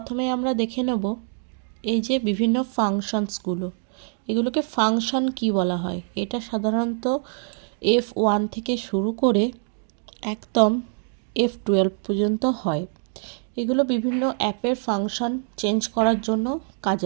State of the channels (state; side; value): silent; left; 62 dB below the other